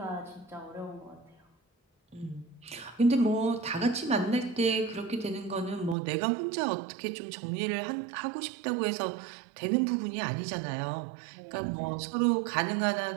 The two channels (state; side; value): drops out; left; at 6.0 s